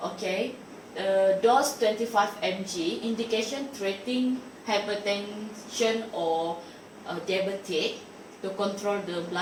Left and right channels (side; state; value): both; identical; correlation 1.00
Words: okay, dose 25 mg, indication treating hypertension or diabetic, to control the